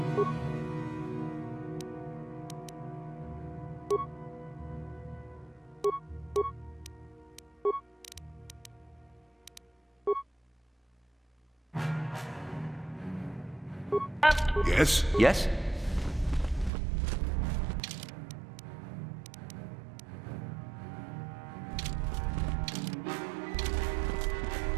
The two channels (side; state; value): left; drops out; at 16.7 s